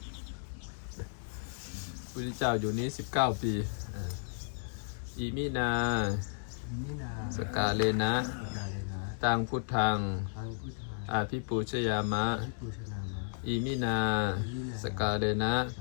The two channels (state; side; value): silent; right; digital silence